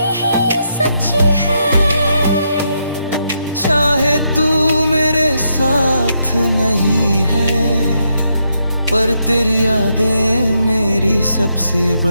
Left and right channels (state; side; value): inverted; both; correlation -0.80